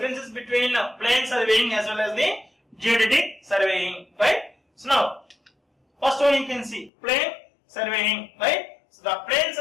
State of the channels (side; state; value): right; drops out; at 6.9 s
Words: between plane surveying as well as the geodetic surveying, right? So now first one you can see plane surveying, right? So the plane